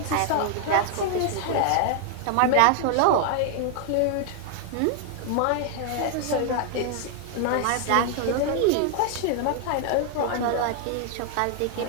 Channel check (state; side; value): different; both; correlation 0.00